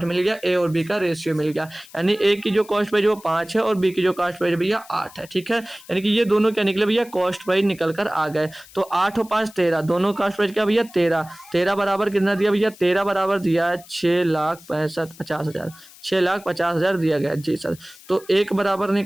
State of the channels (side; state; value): left; noise; hiss, 22 dB below the sound